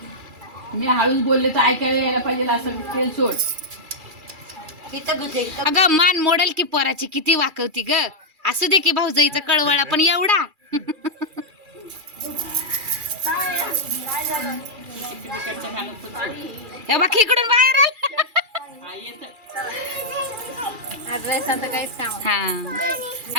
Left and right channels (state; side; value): late; left; 2.4 ms